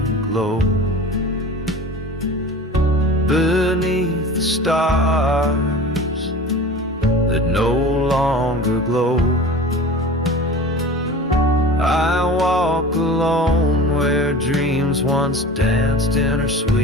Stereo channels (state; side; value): normal; both; correlation 0.37